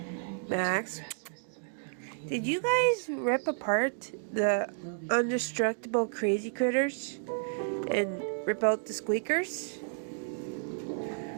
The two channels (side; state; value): left; silent; digital silence